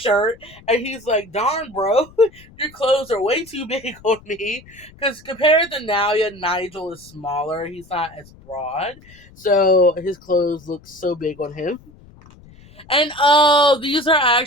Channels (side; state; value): left; noise; rumble, 24 dB below the sound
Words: and he's like, "Darn, bro, your clothes are way too big on me." Because compared to Naoya, Nigel is smaller. He's not as broad. So his clothes look so big on him. And these are